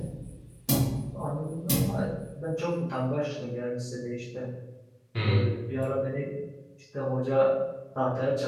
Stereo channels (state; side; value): identical; both; correlation 1.00